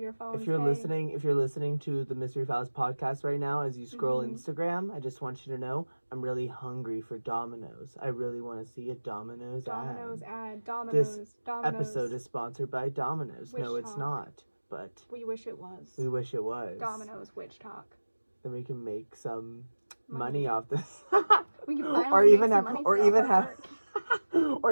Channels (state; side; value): inverted; both; correlation -1.00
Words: phones. If you're listening to the Mystery Files podcast right now, as you scroll Instagram, I just want you to know I'm really hungry for Domino's. I really want to see a Domino's ad. This episode is sponsored by Domino's. No, it's not. But we wish it was. We wish it was. Domino's Witch Talk. Then we can make some money off this. We can or even have our